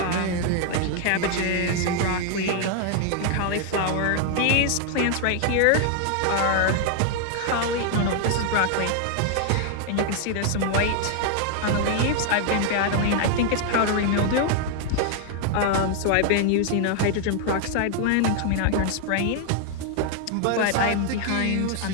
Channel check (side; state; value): both; different; correlation 0.00